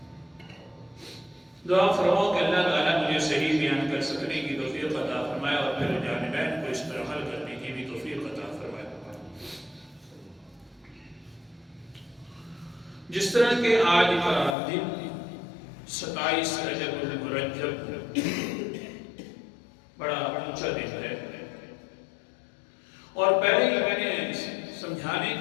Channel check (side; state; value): right; drops out; at 14.6 s